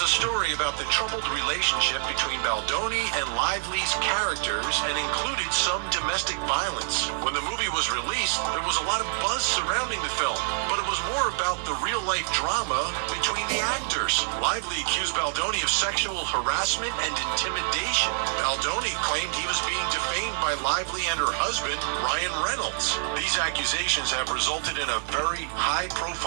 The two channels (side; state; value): left; silent; 61 dB below the other